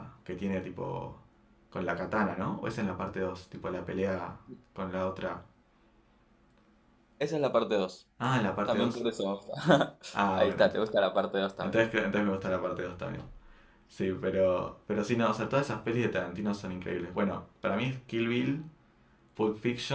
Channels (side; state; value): both; identical; correlation 1.00